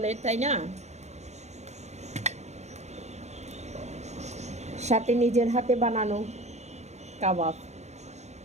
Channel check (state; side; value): late; left; 0.32 ms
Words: তাই না? সাথে নিজের হাতে বানানো কাবাব।